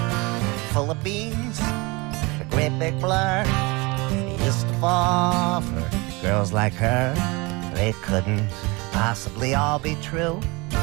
Full of beans, a great big blur. They used to fall for girls like her. They couldn't possibly all be true.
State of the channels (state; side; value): quieter; left; 25.6 dB